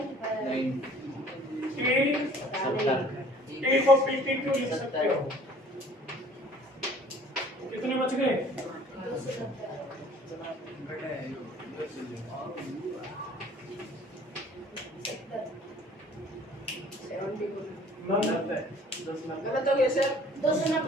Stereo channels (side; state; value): both; normal; correlation 0.53